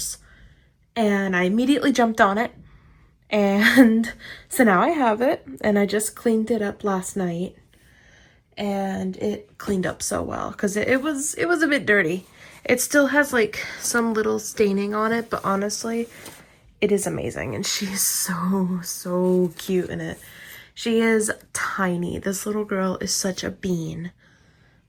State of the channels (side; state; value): both; identical; correlation 1.00